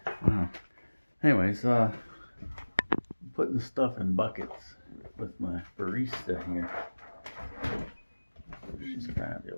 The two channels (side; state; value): both; inverted; correlation -1.00